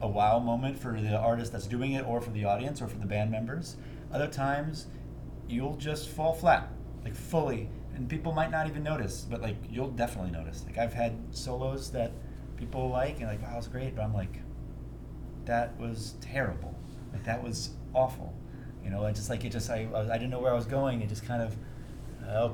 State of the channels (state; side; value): identical; both; correlation 1.00